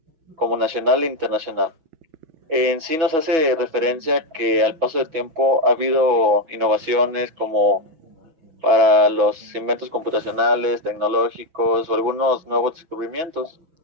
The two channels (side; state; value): left; late; 6.1 ms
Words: como nacional e internacional. En sí nos hace referencia que al paso del tiempo ha habido innovaciones como para los inventos computacionales, tecnológicos o algunos nuevos descubrimientos.